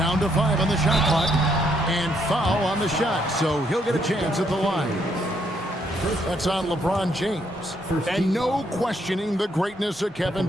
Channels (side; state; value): both; normal; correlation 0.73